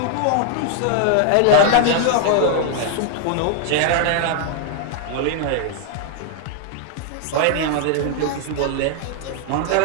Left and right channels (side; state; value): both; different; correlation 0.00